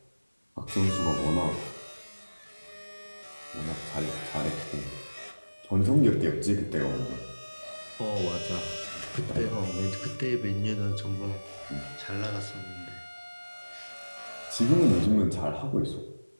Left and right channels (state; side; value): inverted; both; correlation -1.00